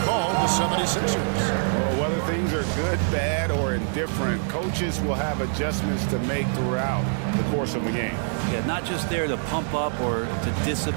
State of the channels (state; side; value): silent; left; 62 dB below the other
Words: called the 76ers. Well, whether things are good, bad, or indifferent, coaches will have adjustments to make throughout the course of the game. Yeah, not just there to pump up or to